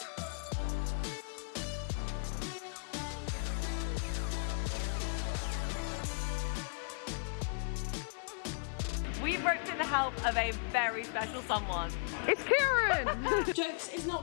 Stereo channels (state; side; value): silent; right; 54 dB below the other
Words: We've roped in the help of a very special someone. It's Kieran! Jokes, it's